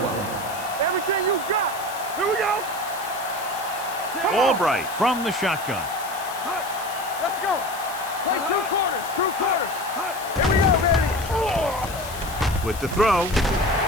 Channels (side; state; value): left; noise; hiss, 14 dB below the sound